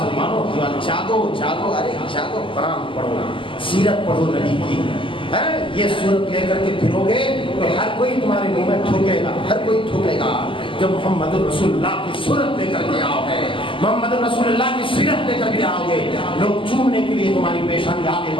جاگو، ارے جاگو، قرآن پڑھو، سیرت پڑھو نبی کی. یہ صورت لے کر کے پھرو گے تو ہر کوئی تمہارے منہ میں تھوکے گا، ہر کوئی تھوکے گا. جب محمد رسول اللہ کی صورت لے کر کے آؤ گے، محمد رسول اللہ کی سیرت لے کر کے آؤ گے، لوگ چومنے کے لیے تمہاری پیشانی آگے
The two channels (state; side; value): late; right; 0.25 ms